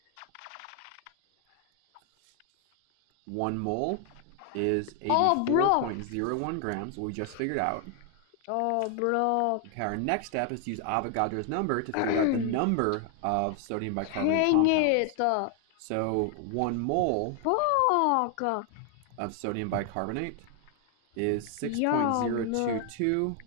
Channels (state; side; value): different; both; correlation 0.00